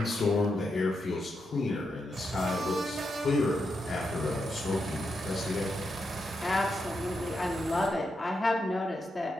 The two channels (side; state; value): both; normal; correlation 0.85